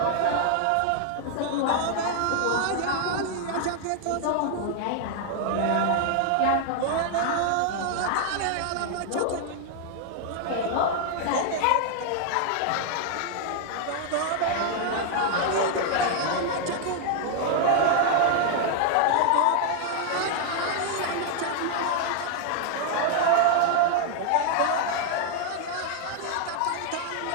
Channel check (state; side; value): different; both; correlation 0.00